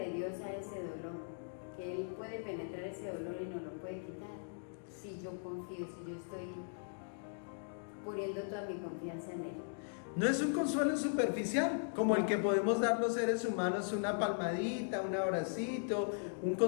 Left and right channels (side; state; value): right; silent; digital silence